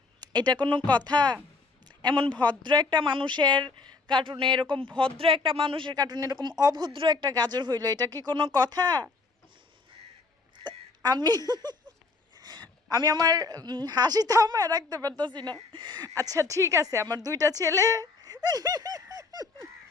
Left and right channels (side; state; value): right; quieter; 4.0 dB